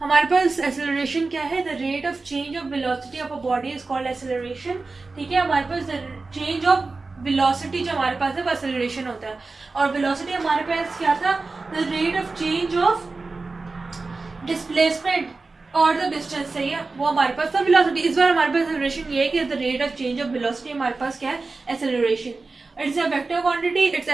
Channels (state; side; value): quieter; left; 3.8 dB